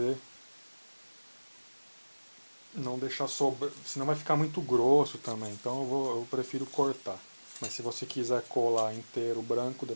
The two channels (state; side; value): inverted; both; correlation -1.00